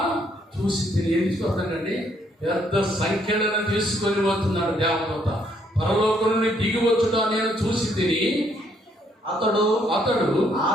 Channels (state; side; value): normal; both; correlation 0.70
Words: ఏం చూస్తానండి? పెద్ద సంఖ్యలను తీసుకొని పోతున్నాడు దేవదూత. పరలోకం నుండి దిగి వచ్చుట నేను చూసి తిని. అతడు